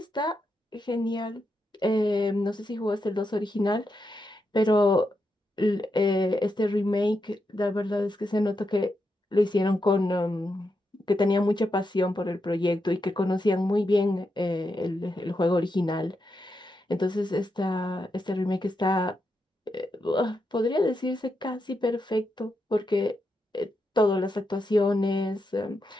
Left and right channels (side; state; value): both; normal; correlation 0.85